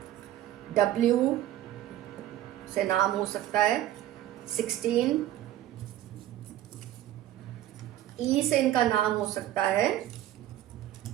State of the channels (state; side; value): quieter; left; 13.1 dB